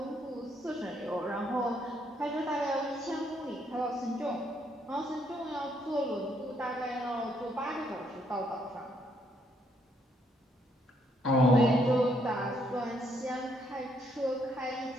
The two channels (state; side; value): normal; both; correlation 0.71